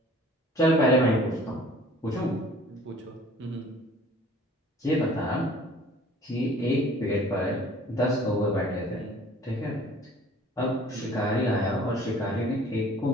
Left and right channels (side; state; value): both; normal; correlation 0.51